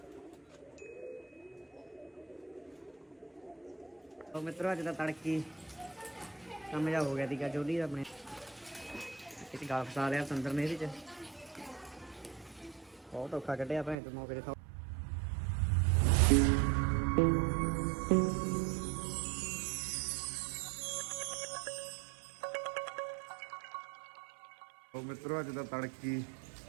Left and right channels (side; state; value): left; drops out; at 14.0 s